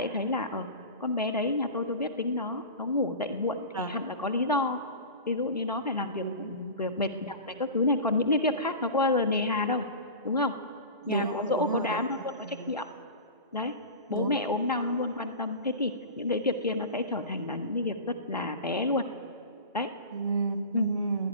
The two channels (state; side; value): inverted; both; correlation -0.31